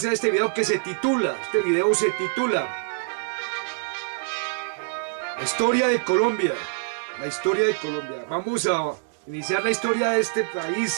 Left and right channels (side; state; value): left; silent; digital silence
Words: este video que se titula, Historia de Colombia. La historia de Colombia. Vamos a iniciar la historia de este